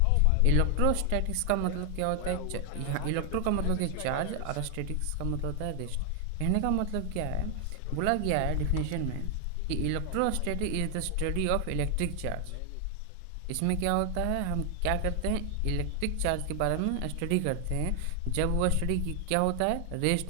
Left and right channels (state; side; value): different; both; correlation 0.00